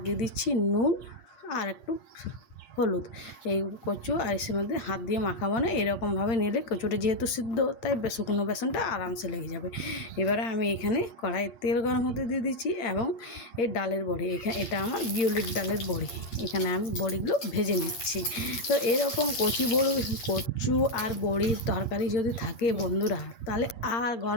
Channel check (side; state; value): right; late; 8.5 ms